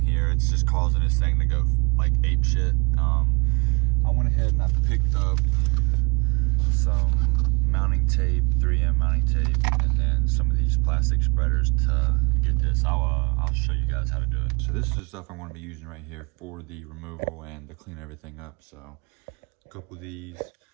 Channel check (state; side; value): quieter; left; 28.7 dB